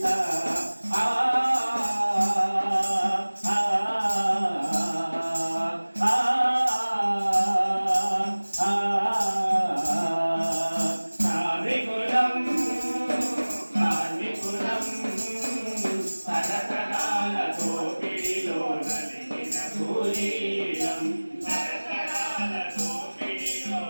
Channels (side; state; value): both; inverted; correlation -1.00